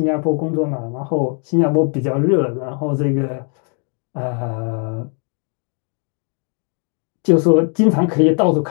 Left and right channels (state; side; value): quieter; right; 39.8 dB